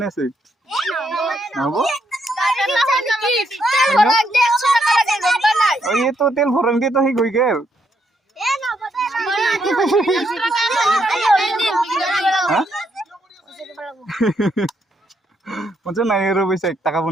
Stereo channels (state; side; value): normal; both; correlation 0.76